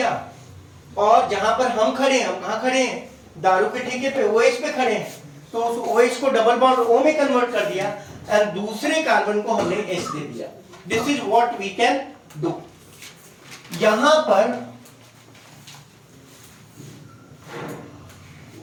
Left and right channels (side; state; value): both; identical; correlation 1.00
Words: और जहां पर हम खड़े हैं, हम कहां खड़े हैं, दारू के ठेके पे OH पे खड़े हैं, तो उस OH को डबल बॉन्ड O में कन्वर्ट कर दिया और दूसरे कार्बन को हमने H दे दिया। This is what we can do. यहां